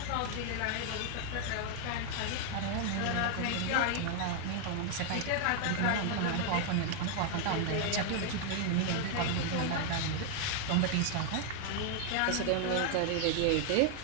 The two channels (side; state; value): both; different; correlation 0.00